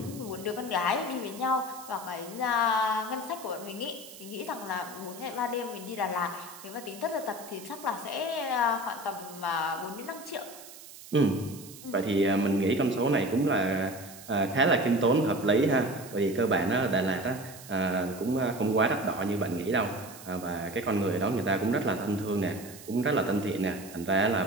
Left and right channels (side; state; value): right; noise; hiss, 17 dB below the sound